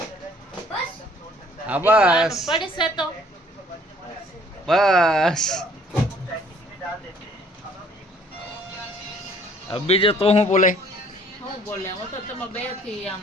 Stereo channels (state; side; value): normal; both; correlation 0.58